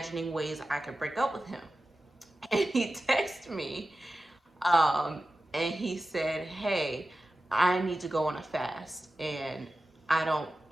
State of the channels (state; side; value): normal; both; correlation 0.94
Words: ways I could break up with him. And he texted me, and he said, "Hey, I need to go on a fast, and I don't,